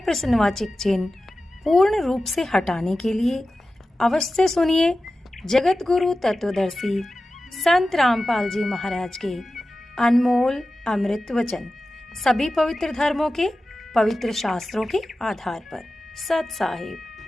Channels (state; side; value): normal; both; correlation 0.94